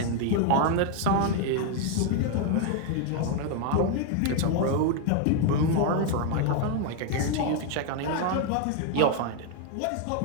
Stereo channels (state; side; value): different; both; correlation 0.00